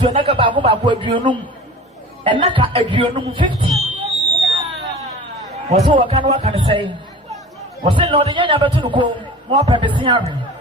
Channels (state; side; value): normal; both; correlation 0.39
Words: naka babu aduonum and naka aduonum 50 was what can say was it not the young better go more pepesiary